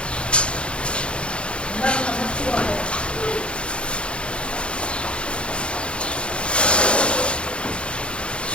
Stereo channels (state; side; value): late; right; 0.057 ms